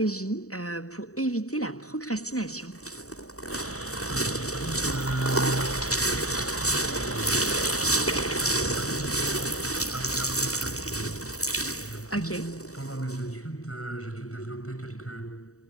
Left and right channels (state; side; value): late; right; 0.65 ms